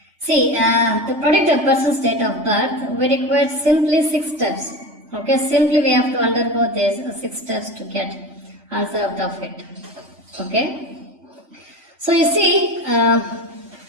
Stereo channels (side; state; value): left; late; 3.3 ms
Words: See, to predict a person's date of birth, we require simply 6 steps. Okay, simply we have to undergo these 6 steps to get answer out of it. Okay. So you see, I